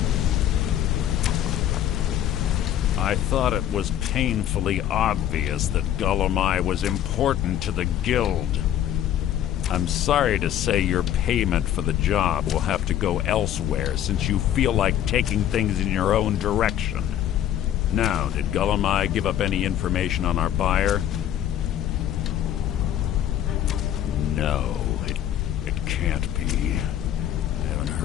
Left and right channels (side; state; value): right; quieter; 11.0 dB